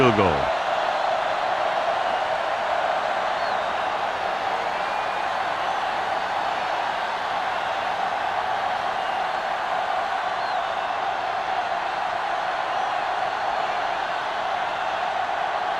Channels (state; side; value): identical; both; correlation 1.00